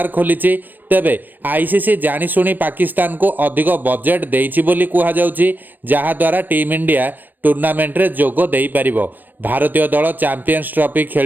खोली। तेबे आईसीसी जाशुणी पाकिस्तान को अधिक बजेट देइछि बोली कुहा जाउछि, जहा द्वारा टीम इंडिया टूर्नामेंट रे जोग देई परिबो। भारतीय दल चैंपियंस ट्रॉफी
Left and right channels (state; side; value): late; left; 0.087 ms